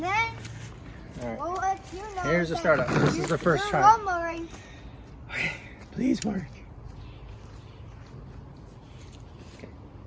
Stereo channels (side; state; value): both; identical; correlation 1.00